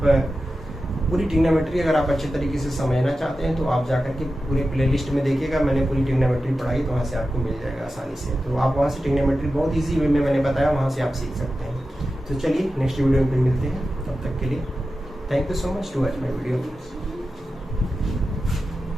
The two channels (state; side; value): normal; both; correlation 0.92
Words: पूरी ट्रिग्नोमेट्री अगर आप अच्छे तरीके से समझना चाहते हैं तो आप जाकर के पूरे प्लेलिस्ट में देखिएगा। मैंने पूरी ट्रिग्नोमेट्री पढ़ाई, तो वहाँ से आपको मिल जाएगा आसानी से। तो आप वहाँ से ट्रिग्नोमेट्री बहुत ईजी वे में मैंने बताया, वहाँ से आप सीख सकते हैं। तो चलिए नेक्स्ट वीडियो में फिर मिलते हैं, तब तक के लिए thank you so much to watch my video.